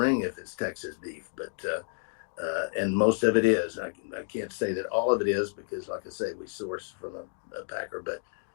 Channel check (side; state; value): right; silent; digital silence